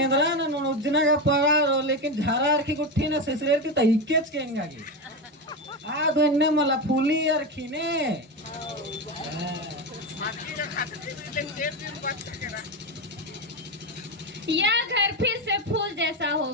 ना उजना का पगार, लेकिन झारा रखी गुट्ठी ना ससुरेर की तहिकेच केंगा की आ तो इन्ने मला फूली रखी ने। यह घर फिर से फूल जैसा हो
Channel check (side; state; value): both; normal; correlation 0.16